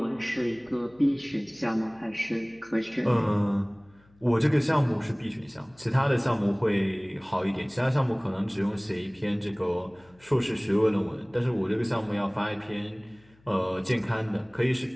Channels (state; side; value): noise; left; hum, 30 dB below the sound